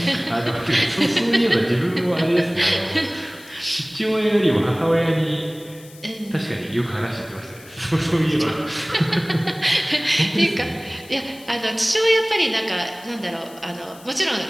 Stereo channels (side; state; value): left; noise; hiss, 22 dB below the sound